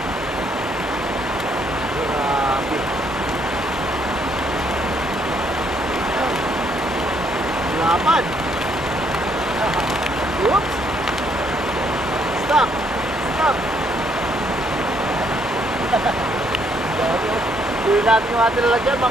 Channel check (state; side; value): normal; both; correlation 0.70